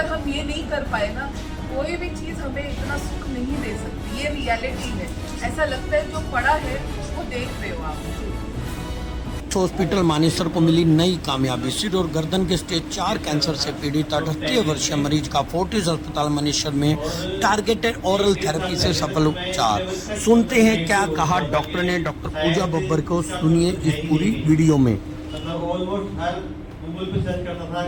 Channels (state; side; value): identical; both; correlation 1.00